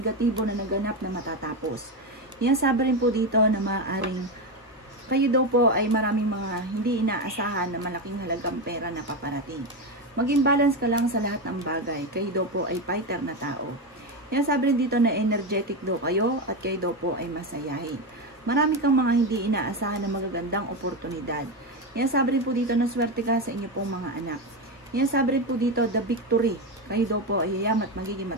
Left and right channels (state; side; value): normal; both; correlation 0.14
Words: na naganap na matatapos. Sinasabi rin po dito na maaaring kayo daw po ay maraming mga hindi inaasahan na malaking halagang pera na paparating. Maging balance ka lang sa lahat ng bagay. Kayo daw po ay fighter na tao. Sinasabi rin dito na energetic daw kayo at kayo daw po ay masayahin. Marami kang mga hindi inaasahan na magagandang oportunidad. Sinasabi rin po dito na swerte ka sa inyo pong mga anak. Sinasabi rin po dito the victory. Kayo daw po ay yayam at magiging